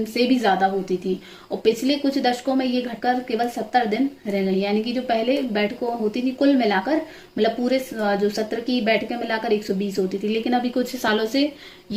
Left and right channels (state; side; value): identical; both; correlation 1.00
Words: से भी ज्यादा होती थी, और पिछले कुछ दशकों में ये घटकर केवल 70 दिन रह गई। यानी कि जो पहले बैठकों होती थी कुल मिलाकर, मतलब पूरे जो सत्र की बैठकें मिलाकर 120 होती थी, लेकिन अभी कुछ सालों से